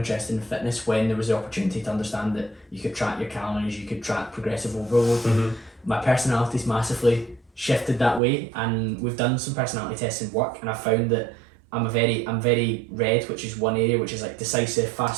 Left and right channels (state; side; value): drops out; left; at 8.2 s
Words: in fitness when there was the opportunity to understand that you could track your calories, you could track progressive overload. My personality's massively shifted that way, and we've done some personality tests in work, and I found that I'm very red, which is one area, which is like decisive,